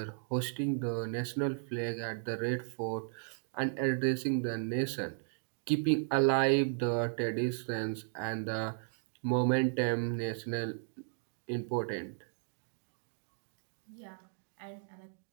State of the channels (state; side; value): silent; left; digital silence